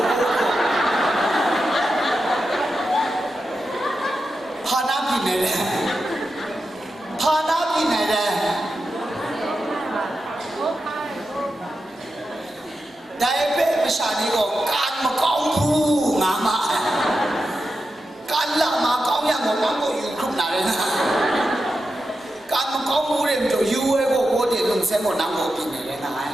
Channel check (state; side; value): normal; both; correlation 0.89